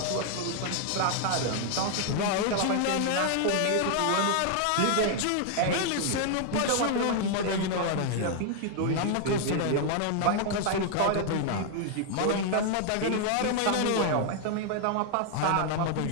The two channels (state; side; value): different; both; correlation 0.00